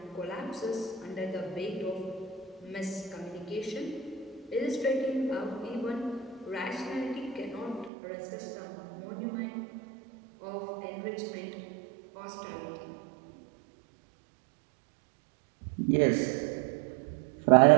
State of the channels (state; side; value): drops out; left; at 7.9 s